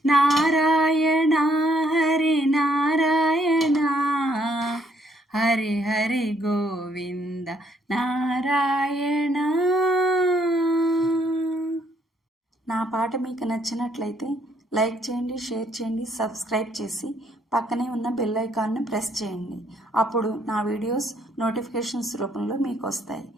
నారాయణ హరి నారాయణ హరి హరి గోవింద నారాయణ. నా పాట మీకు నచ్చినట్లయితే లైక్ చేయండి, షేర్ చేయండి, సబ్స్క్రైబ్ చేసి పక్కనే ఉన్న బెల్ ఐకాన్ని ప్రెస్ చేయండి. అప్పుడు నా వీడియోస్ నోటిఫికేషన్స్ రూపంలో మీకు వస్తాయి.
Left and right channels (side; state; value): both; normal; correlation 0.69